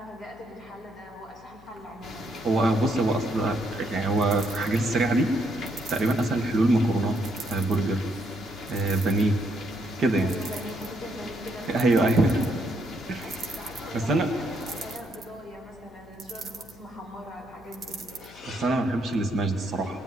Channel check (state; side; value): noise; left; hum, 24 dB below the sound